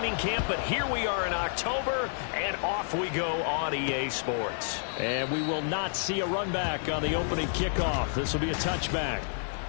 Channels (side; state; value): right; silent; 58 dB below the other